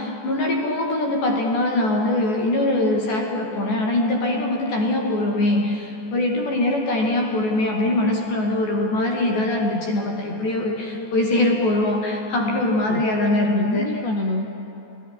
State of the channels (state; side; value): late; right; 14 ms